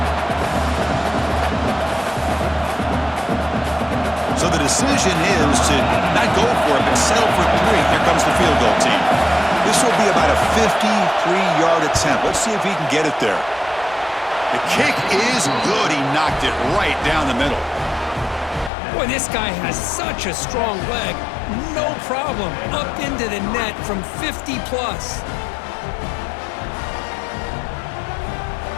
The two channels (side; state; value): right; drops out; at 18.7 s